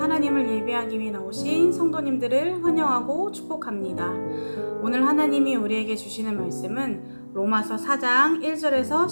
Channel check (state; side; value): inverted; both; correlation -1.00